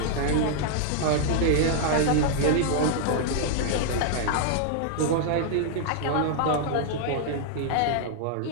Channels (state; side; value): different; both; correlation -0.01